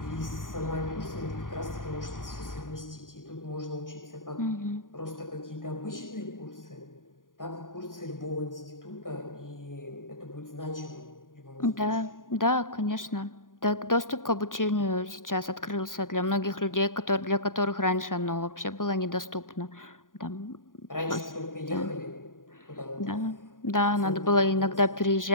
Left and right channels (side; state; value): right; late; 0.89 ms